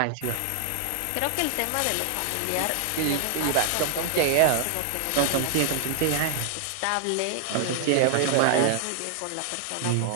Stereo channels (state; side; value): different; both; correlation 0.00